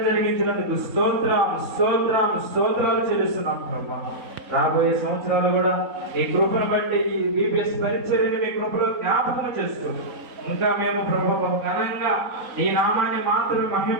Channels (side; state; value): left; late; 3.9 ms